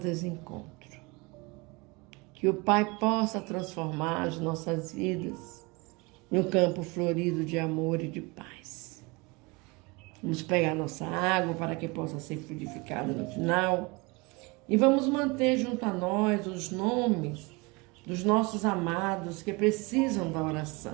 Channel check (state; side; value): quieter; left; 26.5 dB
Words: Que o Pai possa transformar as nossas vidas em um campo florido de amor e de paz. Vamos pegar nossa água para que possa ser fluidificada no final. E vamos manter junto a nós os nomes dos nossos amados que precisam da